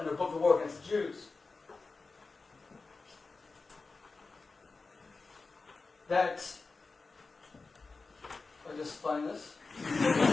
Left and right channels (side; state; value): right; quieter; 4.0 dB